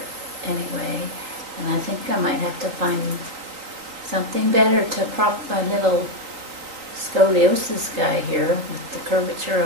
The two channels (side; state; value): left; late; 3.9 ms